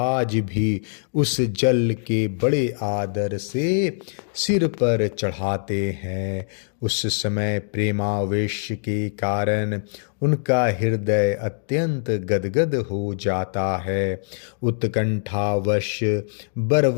भी उस जल के बड़े आदर से सिर पर चढ़ाते हैं। उस समय प्रेमावेश के कारण उनका हृदय अत्यंत गदगद हो जाता है। उत्कंठावश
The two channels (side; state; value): right; silent; digital silence